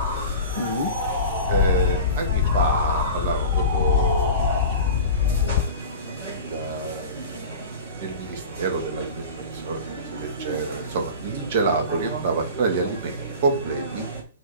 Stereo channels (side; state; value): both; inverted; correlation -0.34